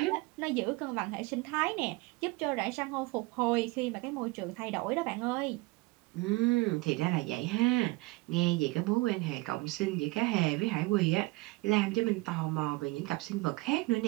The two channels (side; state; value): left; quieter; 22.9 dB